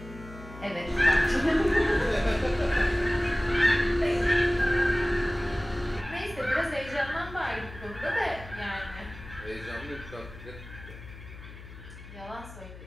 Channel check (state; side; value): noise; left; hum, 15 dB below the sound